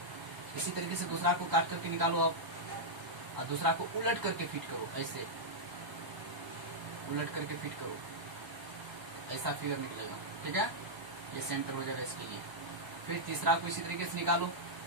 इसी तरीके से दूसरा को काट करके निकालो आप, और दूसरा को उलट करके फिट करो, ऐसे उलट करके फिट करो, ऐसा फिगर निकलेगा। ठीक है, ये सेंटर हो जाएगा इसके लिए। फिर तीसरा को इसी तरीके से निकालो,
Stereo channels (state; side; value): late; left; 1.0 ms